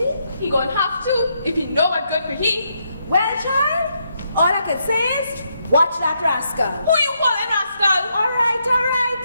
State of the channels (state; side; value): inverted; both; correlation -0.78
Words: He gonna have to if he know what good for he. Well, child, all I can say is, watch that rascal. Who you calling rascal? All right,